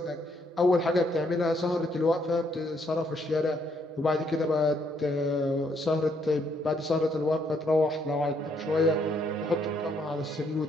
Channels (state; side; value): normal; both; correlation 0.71